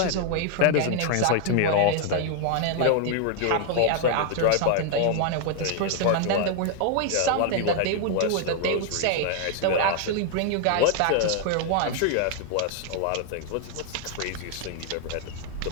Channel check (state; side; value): different; both; correlation 0.00